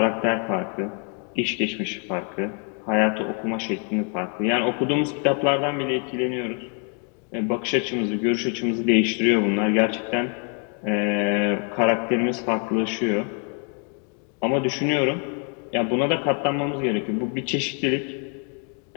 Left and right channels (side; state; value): right; quieter; 39.4 dB